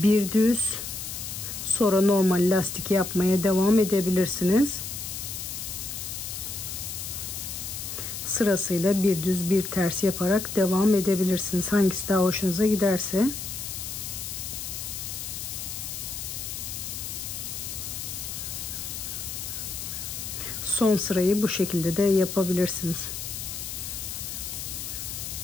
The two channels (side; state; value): left; noise; hiss, 6 dB below the sound